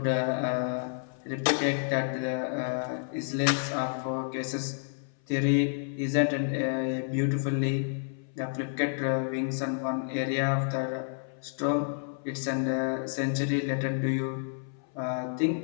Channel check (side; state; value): right; silent; 58 dB below the other